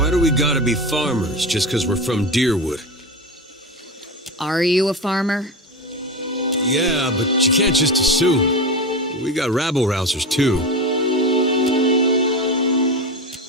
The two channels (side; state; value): both; normal; correlation 0.22